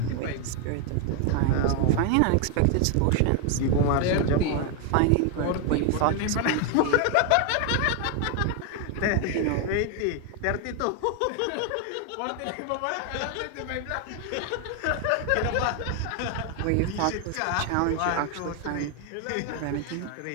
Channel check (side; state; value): both; different; correlation 0.01